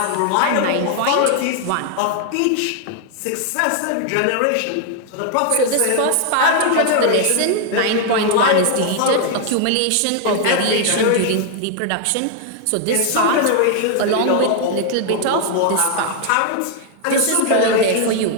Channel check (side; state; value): both; different; correlation 0.00